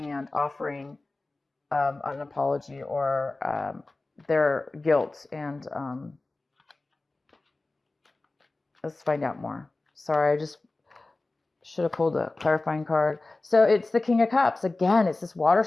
offering an apology or their guilt. And let's find out more. Sorry, I just should have pulled a clarifying card. So it's the King of Cups. Again, it's this water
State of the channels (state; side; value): quieter; right; 3.1 dB